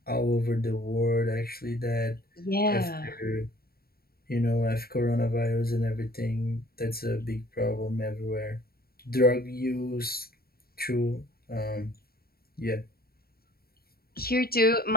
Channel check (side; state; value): right; late; 0.44 ms